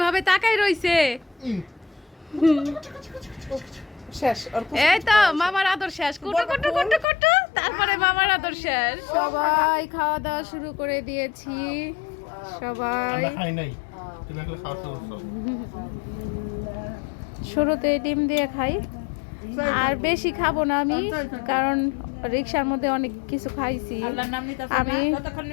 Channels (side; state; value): right; drops out; at 7.1 s